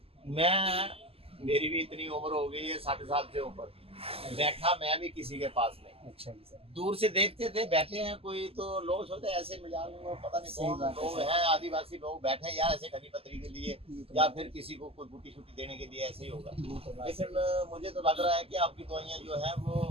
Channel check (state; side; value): late; left; 0.28 ms